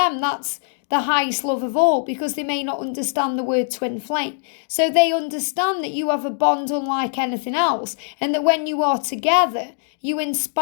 that's the highest love of all, because they may not understand the word twin flame. So they understand that you have a bond unlike anything else, and that when you are together, you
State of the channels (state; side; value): silent; right; 57 dB below the other